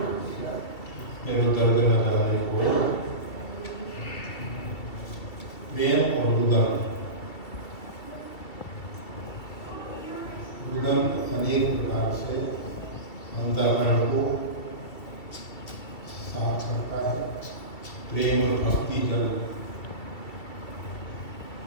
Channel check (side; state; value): right; late; 2.6 ms